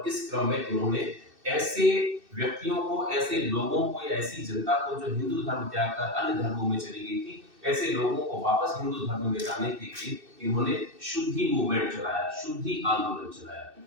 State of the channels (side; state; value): left; late; 2.6 ms